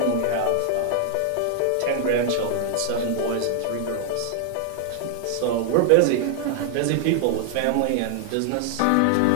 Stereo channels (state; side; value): different; both; correlation 0.00